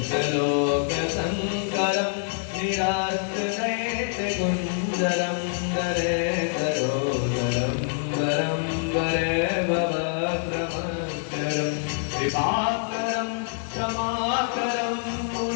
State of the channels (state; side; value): silent; right; 61 dB below the other